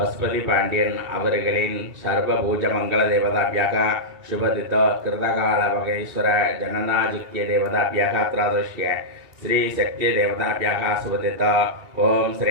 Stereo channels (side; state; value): left; late; 2.3 ms